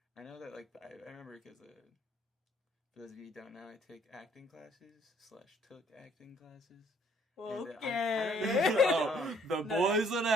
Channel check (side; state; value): both; normal; correlation 0.62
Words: I know that I remember because for those of you who don't know, I take acting classes / took acting classes. Okay. Oh, the boy's an